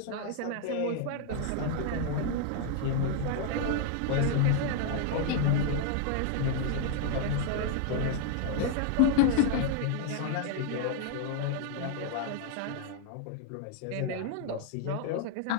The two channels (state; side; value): different; both; correlation 0.00